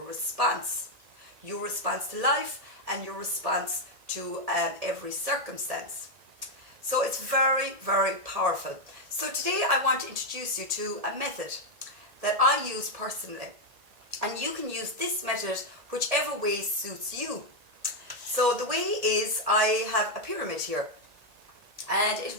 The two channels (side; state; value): left; late; 1.8 ms